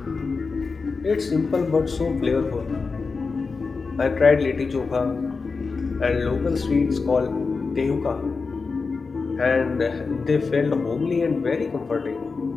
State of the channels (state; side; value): quieter; right; 4.5 dB